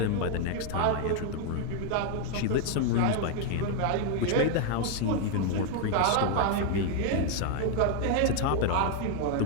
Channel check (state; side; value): different; both; correlation 0.00